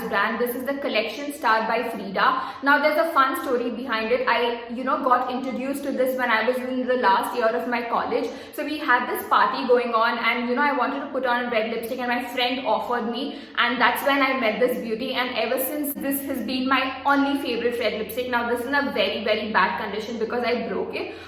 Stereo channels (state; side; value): identical; both; correlation 1.00